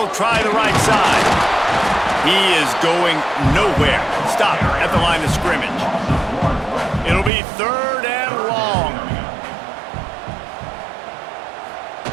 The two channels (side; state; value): left; drops out; at 7.3 s